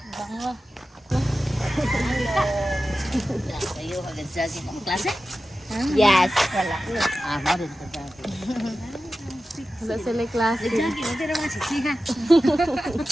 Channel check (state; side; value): normal; both; correlation 0.94